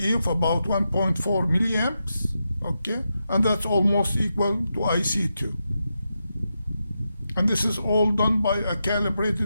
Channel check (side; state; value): both; inverted; correlation -0.87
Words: of about 1.4 milliamps. Okay, and that's almost equal to IC2. And this is all done by a